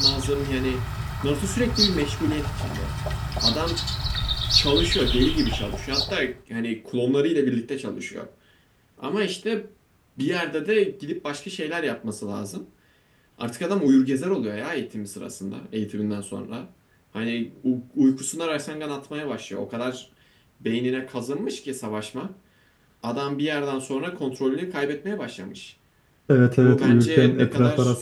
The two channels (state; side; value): identical; both; correlation 1.00